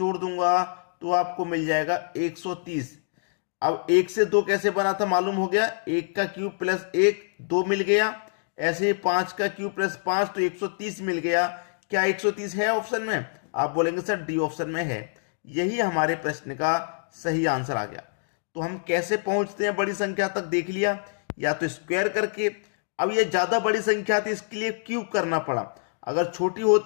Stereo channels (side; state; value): right; silent; digital silence